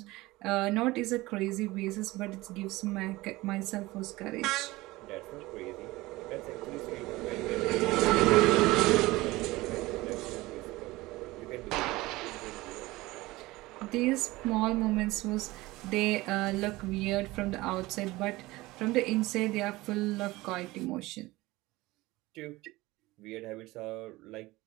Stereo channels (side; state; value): left; quieter; 19.9 dB